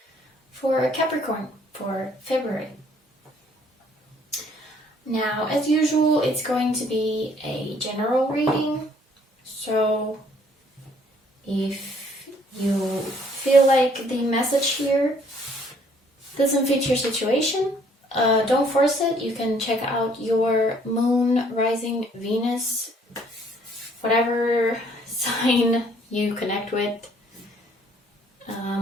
for Capricorn for February. Now, as usual, it's going to be a general reading, so if you feel like the message here doesn't fit your situation, don't force it. You can check out your moon, rising, Venus, whatever sign you connect with.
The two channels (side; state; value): both; normal; correlation 0.62